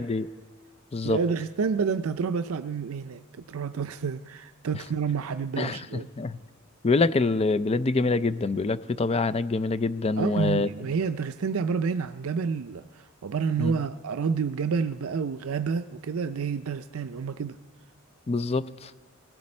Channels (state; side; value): normal; both; correlation 0.46